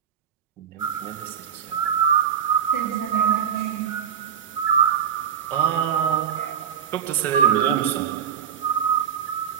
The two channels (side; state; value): left; quieter; 8.3 dB